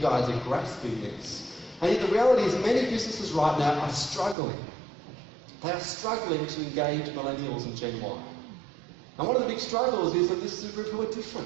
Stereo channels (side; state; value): left; drops out; at 4.4 s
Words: guys are grasping this. And yet the reality is many businesses right now are struggling. They are struggling to engage millennials and Gen Y. And one of the big struggles is that this is a group who are